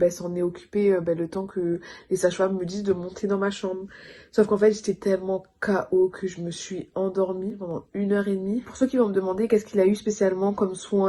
s'en est occupée le temps que les sages-femmes me disent de monter dans ma chambre. Sauf qu'en fait, j'étais tellement KO que je me suis endormie pendant 1 heure et demie. Pour ceux qui vont me demander qu'est-ce qu'il a eu spécialement comme soin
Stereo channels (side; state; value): both; identical; correlation 1.00